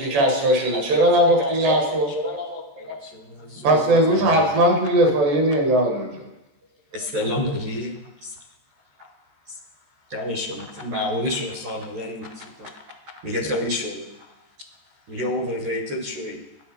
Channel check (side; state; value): left; late; 14 ms